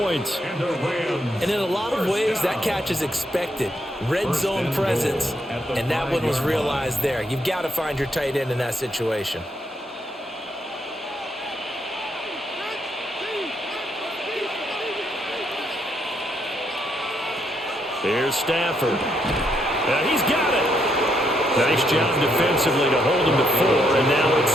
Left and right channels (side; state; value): both; normal; correlation 0.76